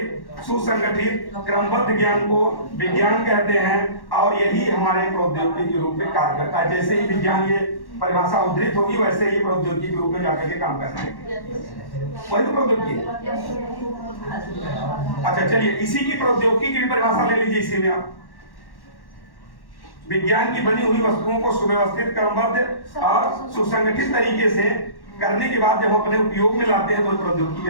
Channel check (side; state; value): right; late; 1.1 ms